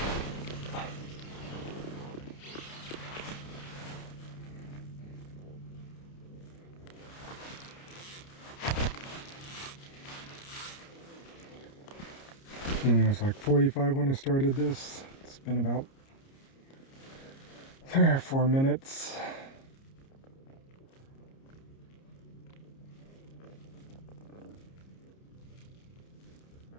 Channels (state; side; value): late; right; 30 ms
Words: And it was like 45 when I started this. It's been about 3 or 4 minutes.